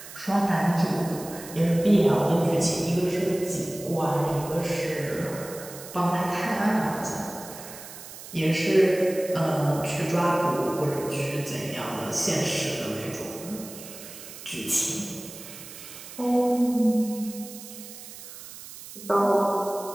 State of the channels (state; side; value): noise; right; hiss, 14 dB below the sound